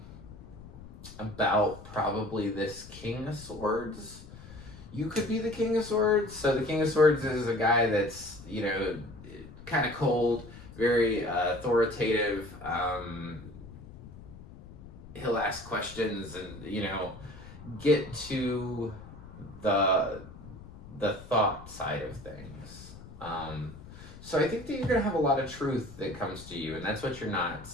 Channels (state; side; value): noise; left; rumble, 16 dB below the sound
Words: about probably this King of Swords. You could be the King of Swords. So the King of Swords is a guy that's, kind of cold, very authoritative. He'll ask questions and, get to the thought side of things. So I think that you're going to have a lot of truth that comes to you, and that's what you're not